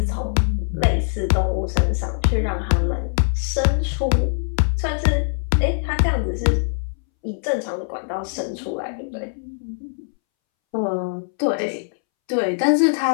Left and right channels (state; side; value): silent; right; 64 dB below the other